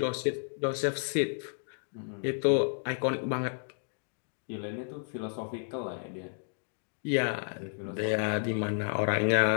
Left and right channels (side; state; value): right; silent; digital silence